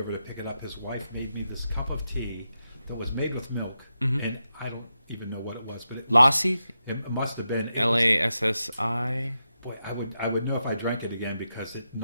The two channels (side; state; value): both; inverted; correlation -0.87